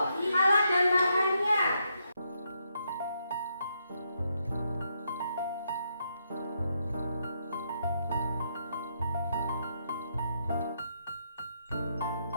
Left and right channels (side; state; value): both; inverted; correlation -0.78